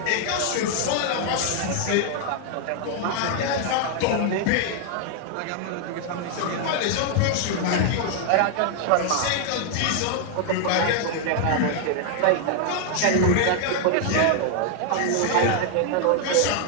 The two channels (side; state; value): both; different; correlation 0.00